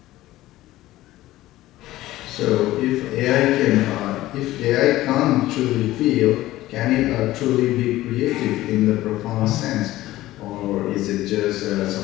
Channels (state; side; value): quieter; right; 16.1 dB